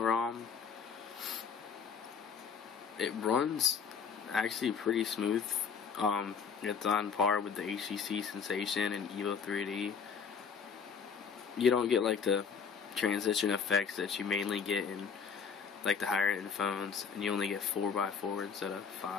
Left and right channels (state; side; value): quieter; right; 6.2 dB